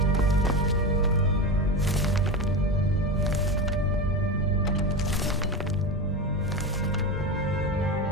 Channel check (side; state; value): both; normal; correlation 0.21